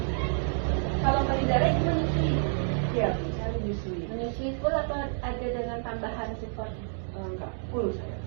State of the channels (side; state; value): left; silent; 59 dB below the other